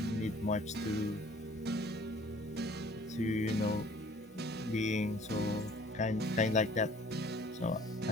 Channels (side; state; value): both; normal; correlation 0.54